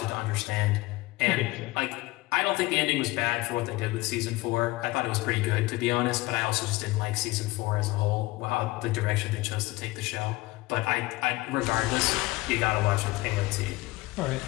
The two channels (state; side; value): quieter; right; 20.6 dB